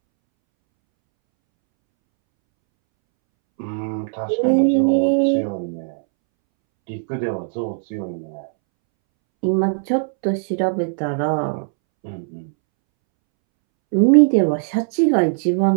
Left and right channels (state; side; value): silent; left; 65 dB below the other